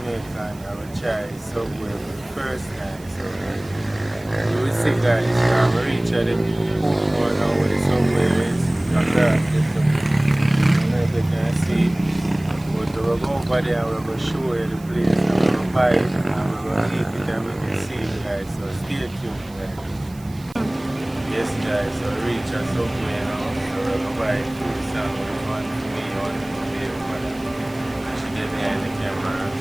I will try subway for the first time. So you will see guys, I'm going to reach at the Portmore now where the subway is. Across the subway. I don't know if you can see. But we'll go over there and we're going to show you the place and we're going to buy it and we're going to eat it and we can see it guys, so stay tuned guys. Yes guys, so reach us somewhere now, so we're going to buy food sandwich, one for me, one for me, and she get behind the camera,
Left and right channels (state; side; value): noise; right; hiss, 24 dB below the sound